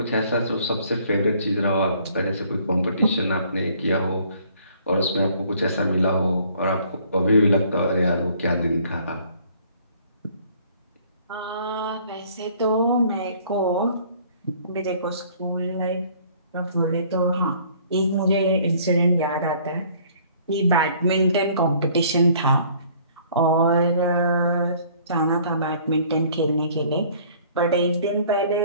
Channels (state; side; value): inverted; both; correlation -0.57